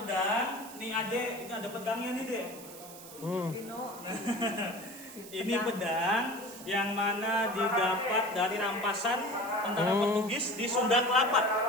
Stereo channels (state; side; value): noise; right; hiss, 16 dB below the sound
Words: nih Ade, ini ada pedangnya nih Dek. Ini pedang yang mana didapat dari rampasan tentara Portugis di Sunda Kelapa,